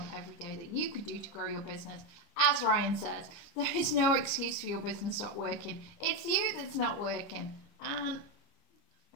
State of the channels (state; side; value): late; right; 29 ms